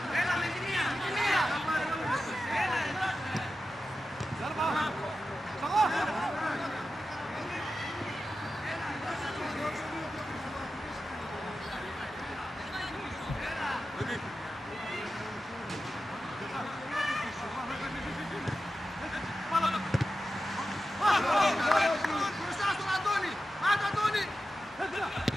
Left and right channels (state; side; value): normal; both; correlation 0.92